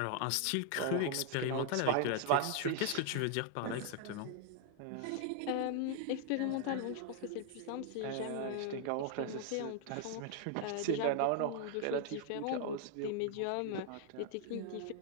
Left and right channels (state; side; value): different; both; correlation 0.00